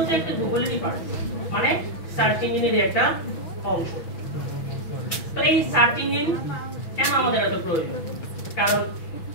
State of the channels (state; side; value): late; right; 6.2 ms